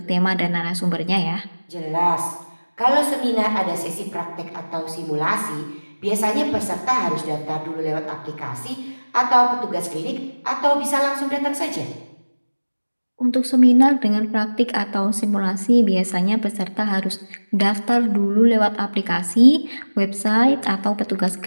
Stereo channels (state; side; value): inverted; both; correlation -1.00